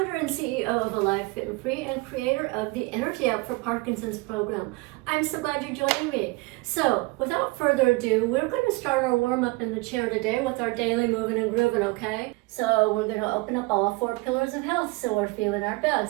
and CEO of Alive Fit and Free and creator of the Energy App for Parkinson's program. I'm so glad you're joining me. So, without further ado, we're going to start our warm-up in the chair today with our daily moving and grooving, okay? So, we're going to open up all 4 pillars of health so we're feeling our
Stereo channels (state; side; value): quieter; left; 24.4 dB